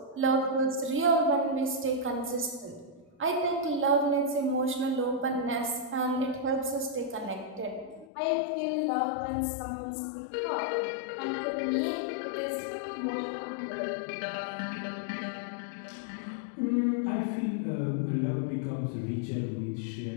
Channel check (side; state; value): right; drops out; at 8.1 s